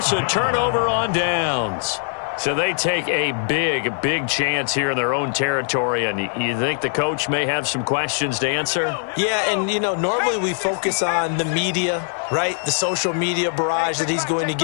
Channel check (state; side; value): silent; right; digital silence